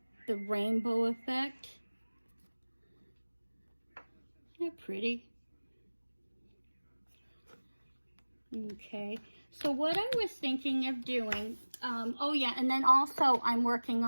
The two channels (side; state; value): both; inverted; correlation -1.00